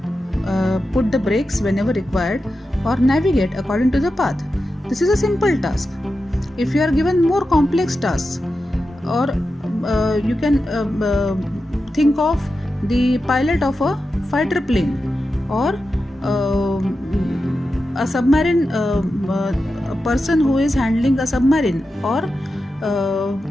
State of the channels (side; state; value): both; normal; correlation 0.91